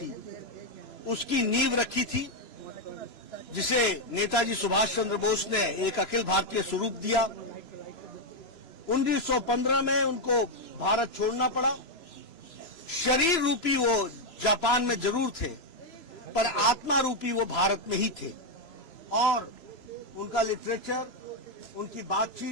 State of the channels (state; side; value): late; right; 3.0 ms